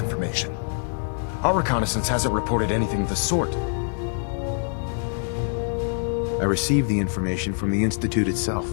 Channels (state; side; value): silent; right; digital silence